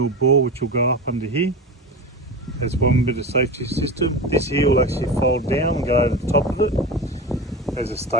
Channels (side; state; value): both; normal; correlation 0.26